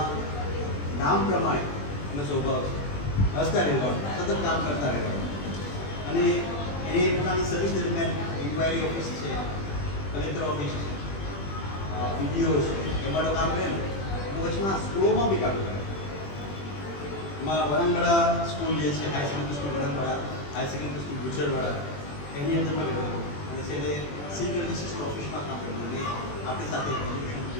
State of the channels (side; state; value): right; late; 21 ms